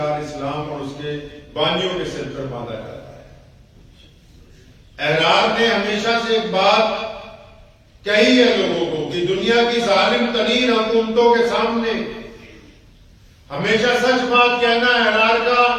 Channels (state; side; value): identical; both; correlation 1.00